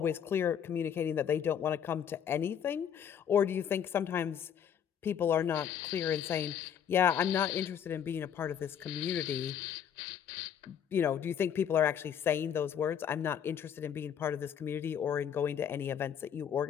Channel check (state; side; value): quieter; right; 8.6 dB